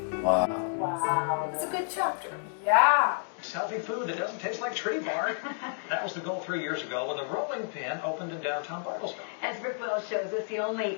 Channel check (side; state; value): right; silent; digital silence